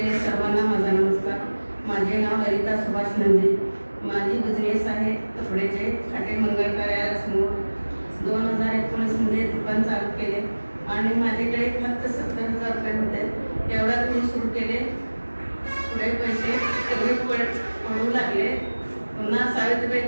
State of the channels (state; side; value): inverted; both; correlation -1.00